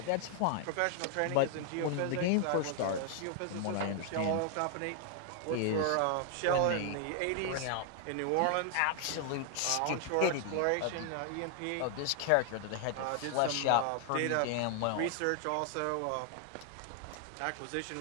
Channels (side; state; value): both; different; correlation 0.00